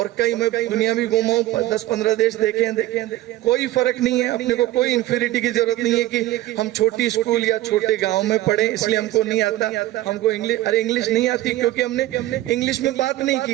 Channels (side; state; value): left; quieter; 15.6 dB